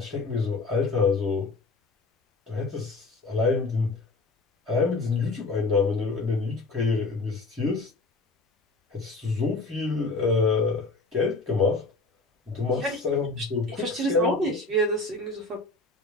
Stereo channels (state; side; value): quieter; right; 3.3 dB